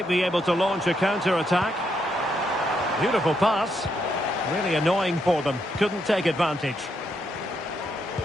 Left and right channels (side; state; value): both; normal; correlation 0.78